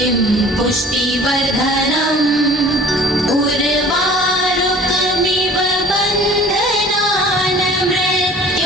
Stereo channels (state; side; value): normal; both; correlation 0.47